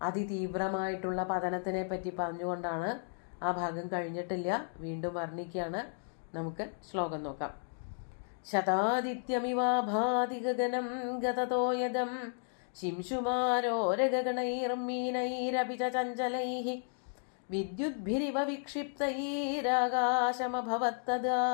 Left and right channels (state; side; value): silent; right; digital silence